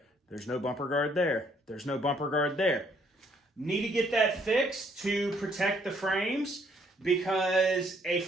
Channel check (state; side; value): normal; both; correlation 0.67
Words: There's no bumper guard there. There's no bumper guard there. Need to get that fixed to protect the frames, because a